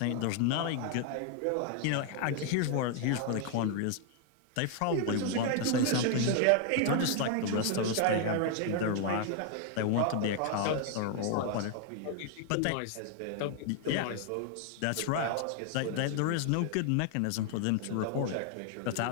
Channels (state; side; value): different; both; correlation 0.00